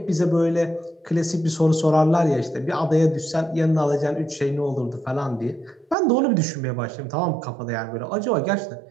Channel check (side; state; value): left; drops out; at 6.0 s